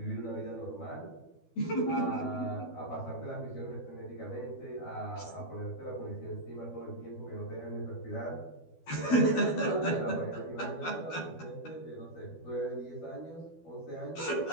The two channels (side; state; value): right; late; 12 ms